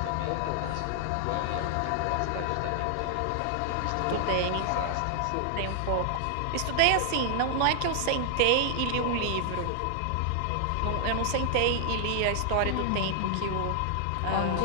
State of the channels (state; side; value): different; both; correlation -0.01